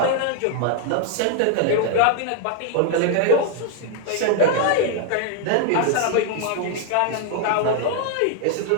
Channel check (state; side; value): different; both; correlation 0.00